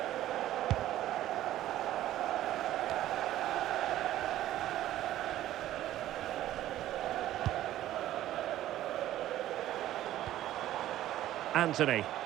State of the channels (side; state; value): left; quieter; 13.6 dB